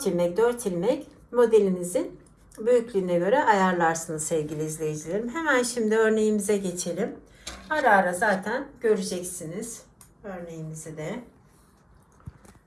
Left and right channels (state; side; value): identical; both; correlation 1.00